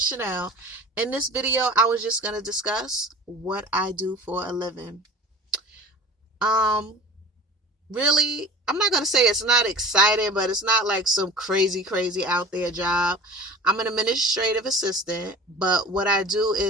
Chanel. In this video, I was just going to discuss what I do for a living. Um, really, I'm not going to say it's not exciting, but it's not like some crazy out there job. I'm an administrative assistant, but what I do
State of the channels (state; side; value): normal; both; correlation 0.39